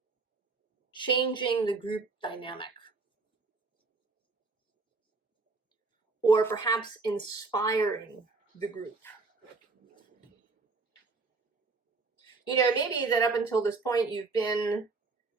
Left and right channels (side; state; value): left; quieter; 4.0 dB